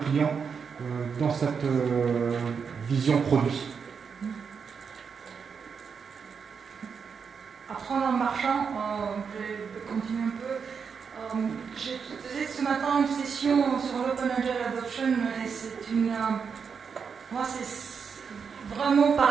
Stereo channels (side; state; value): left; quieter; 6.2 dB